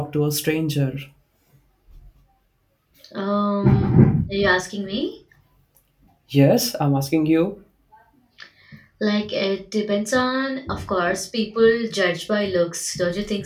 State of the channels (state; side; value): identical; both; correlation 1.00